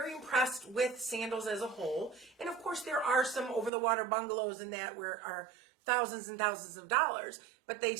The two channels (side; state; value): left; drops out; at 3.7 s